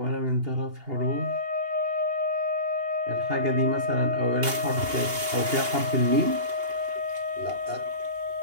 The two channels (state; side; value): late; left; 2.8 ms